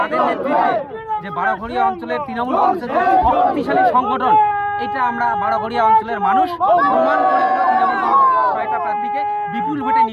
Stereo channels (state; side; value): identical; both; correlation 1.00